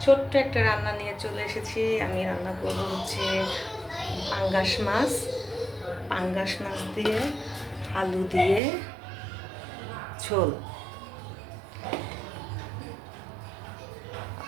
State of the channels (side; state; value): left; drops out; at 8.6 s